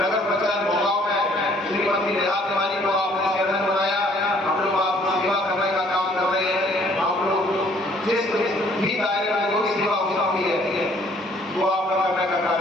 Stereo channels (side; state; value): both; normal; correlation 0.61